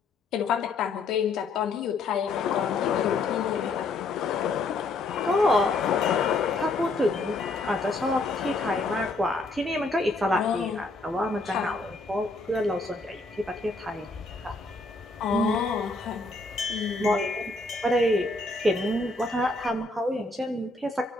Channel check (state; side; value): quieter; right; 3.2 dB